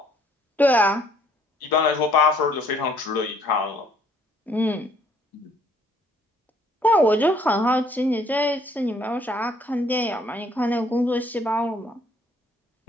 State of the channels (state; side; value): normal; both; correlation 0.63